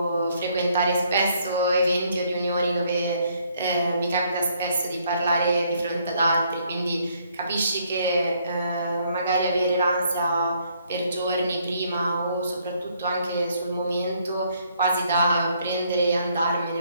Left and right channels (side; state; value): both; inverted; correlation -0.68